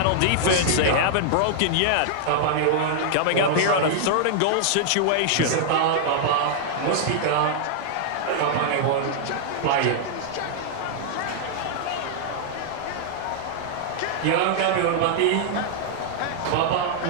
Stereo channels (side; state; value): both; different; correlation -0.01